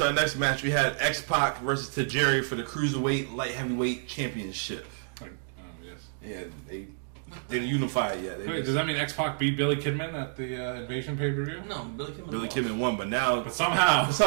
our next match we had X-Pac versus Tajiri for the Cruiserweight Light Heavyweight Championship. Yes. Yeah, they didn't unify it yet. They Wait, just- does that mean X-Pac beat Billy Kidman at the Invasion pay-per-view? No, Billy Kidman. Billy lost. Kidman won, but now But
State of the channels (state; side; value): silent; left; digital silence